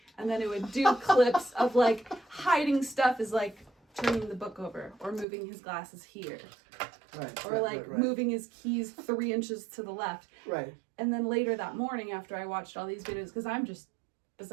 And then it would do clips of like hiding stuff is like turning the book over or moving his glasses here. Right. Or like moving his keys 3 inches to the left. Right. And then later that morning after I watched all these videos, because I'm just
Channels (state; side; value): drops out; left; at 5.2 s